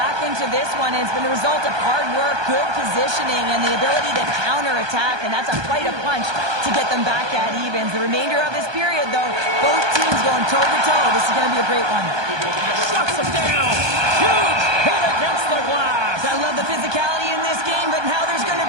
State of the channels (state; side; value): late; left; 1.2 ms